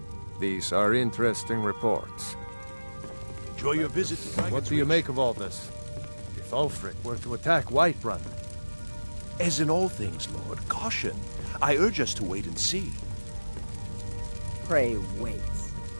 These are interesting reports. Enjoy your visit to What do you make of all this? If Ulfric were to attack Whiterun? As in all things, Lord, caution. I urge us to wait and see. Pray wait.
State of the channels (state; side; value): inverted; both; correlation -1.00